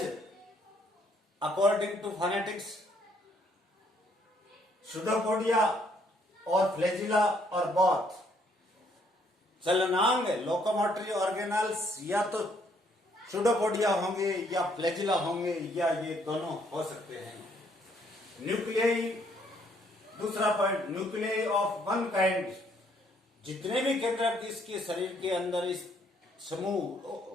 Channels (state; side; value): normal; both; correlation 0.67